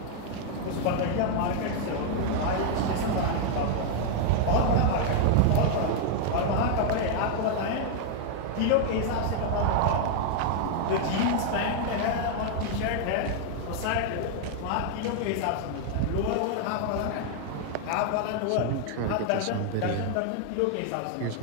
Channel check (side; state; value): both; different; correlation 0.00